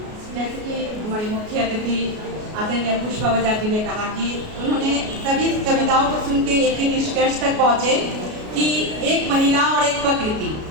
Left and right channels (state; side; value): late; left; 33 ms